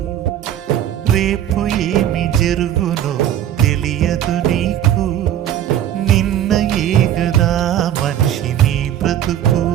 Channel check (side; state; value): left; quieter; 11.0 dB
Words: రేపు ఏమి జరుగునో తెలియదు నీకు. నిన్నయే కదా మనిషి నీ బ్రతుకు,